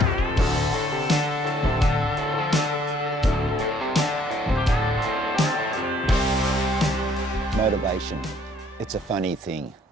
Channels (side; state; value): both; normal; correlation 0.63